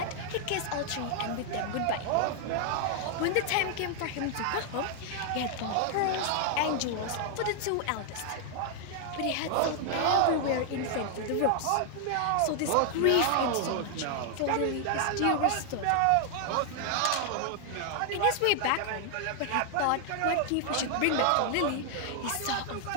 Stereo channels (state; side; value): different; both; correlation 0.00